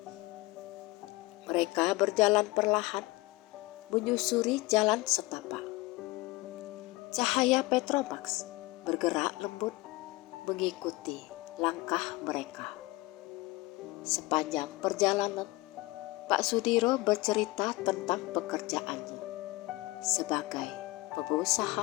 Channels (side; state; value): right; quieter; 21.8 dB